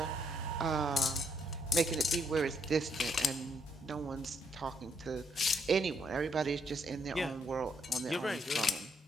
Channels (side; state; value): both; normal; correlation 0.73